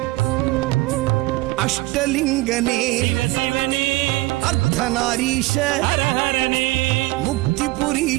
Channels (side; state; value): left; quieter; 20.6 dB